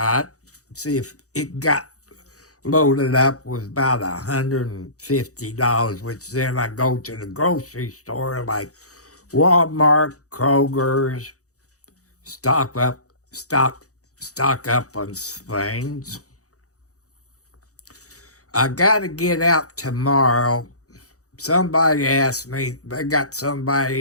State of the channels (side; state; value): right; late; 0.66 ms